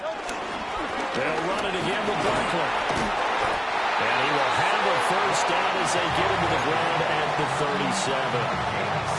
They'll run it again with Barkley. And he will have a first down as they get him to the ground at the 37.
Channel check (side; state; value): both; identical; correlation 1.00